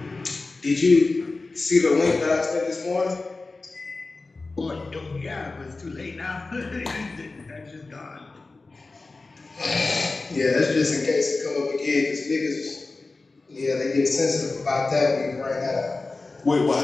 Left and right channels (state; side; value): quieter; right; 3.6 dB